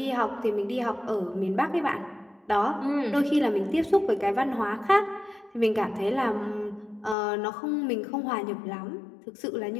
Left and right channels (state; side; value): drops out; right; at 7.2 s